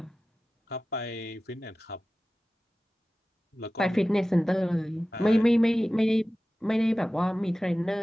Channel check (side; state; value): both; normal; correlation 0.96